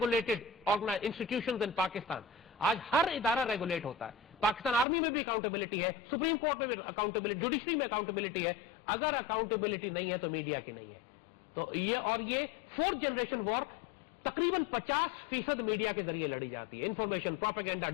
institutions in Pakistan, آج ہر ادارہ ریگولیٹ ہوتا ہے. پاکستان آرمی میں بھی اکاؤنٹیبلٹی ہے, سپریم کورٹ میں بھی اکاؤنٹیبلٹی, جوڈیشری میں اکاؤنٹیبلٹی ہے. اگر اکاؤنٹیبلٹی نہیں ہے تو میڈیا کی نہیں ہے. تو یہ فورتھ جنریشن وار تقریباً 50% میڈیا کے ذریعے لڑی جاتی ہے. انفارمیشن, پروپیگنڈا,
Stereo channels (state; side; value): drops out; right; at 4.9 s